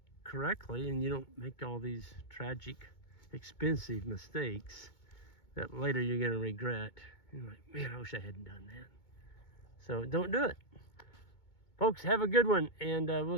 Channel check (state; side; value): late; right; 2.2 ms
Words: correctly, and you don't make all these tragic, expensive mistakes that later you're going to regret. You're like, man, I wish I hadn't done that. So don't do it. Folks, have a good one, and